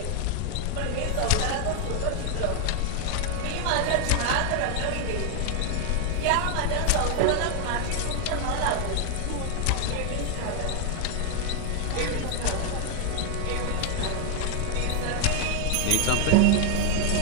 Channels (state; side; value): different; both; correlation 0.00